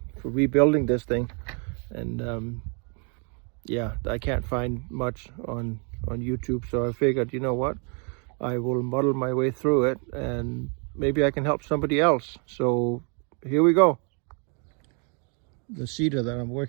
rebuilding this thing, and yeah, I can't find much on YouTube. So I figured, you know what, I will muddle my way through it, and maybe I can help somebody else. So here we go. The cedar that I'm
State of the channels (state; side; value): quieter; left; 37.4 dB